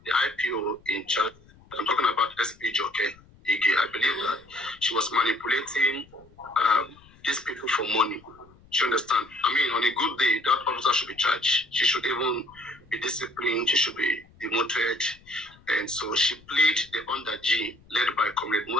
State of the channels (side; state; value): left; noise; rumble, 27 dB below the sound